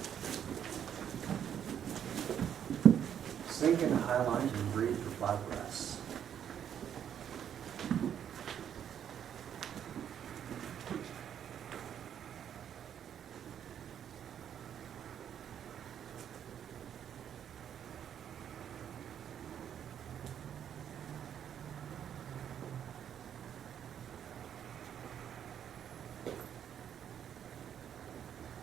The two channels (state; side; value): quieter; left; 9.2 dB